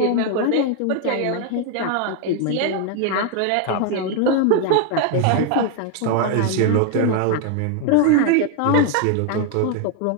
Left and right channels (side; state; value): both; different; correlation 0.01